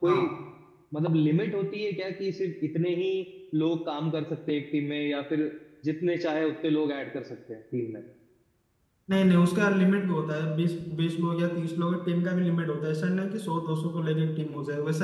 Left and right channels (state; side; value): identical; both; correlation 1.00